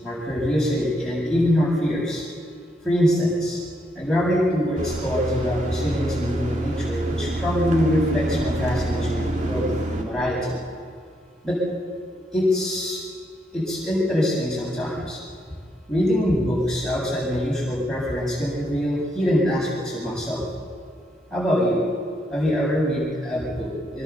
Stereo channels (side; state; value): both; normal; correlation 0.77